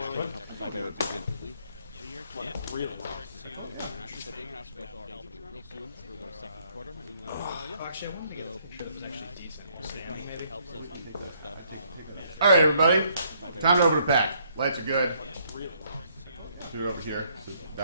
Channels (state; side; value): inverted; both; correlation -0.68